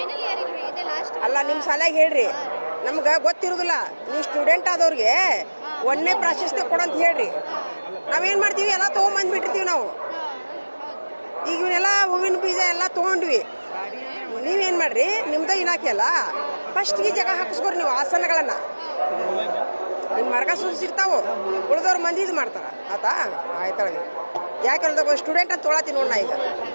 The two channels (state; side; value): inverted; both; correlation -1.00